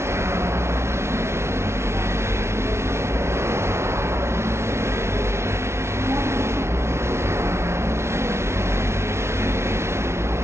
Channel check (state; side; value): late; left; 0.13 ms